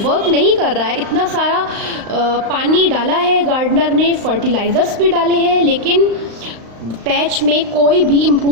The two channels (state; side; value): late; left; 35 ms